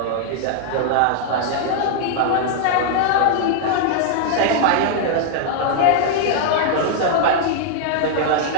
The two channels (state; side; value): different; both; correlation -0.01